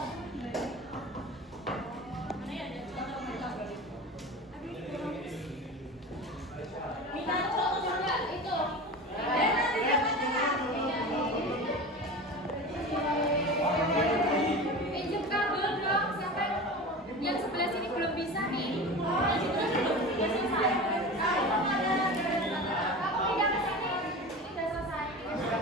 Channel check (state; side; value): normal; both; correlation 0.31